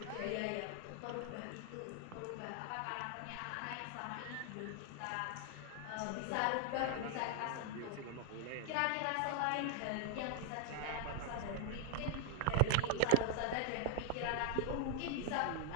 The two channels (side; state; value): both; different; correlation 0.00